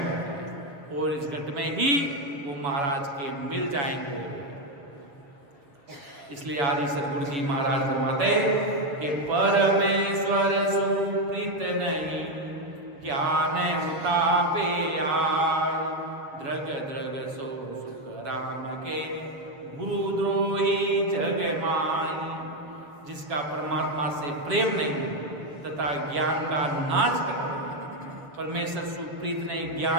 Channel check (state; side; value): late; left; 6.8 ms